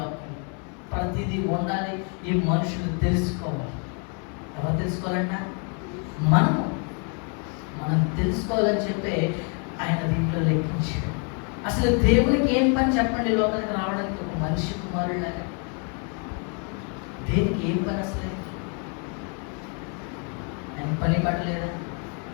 ప్రతిదీ ఉండాలి, ఈ మనుషులు తెలుసుకోవాలి. ఎవరు తెలుసుకోవాలంట? మనం తెలుసుకోవాలని చెప్పి ఆయన దీంట్లో లెక్కించాడు. అసలు దేవునికి ఏం పని చెప్పండి? లోకానికి రావడానికి ఒక మనిషి కుమారులాగా దేనికి ఏం పని? అసలు ఆయన పని పడలేదా?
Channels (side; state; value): right; quieter; 38.8 dB